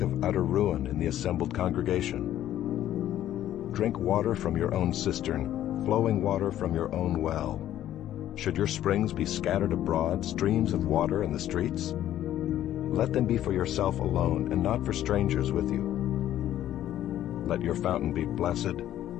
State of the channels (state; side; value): quieter; right; 12.3 dB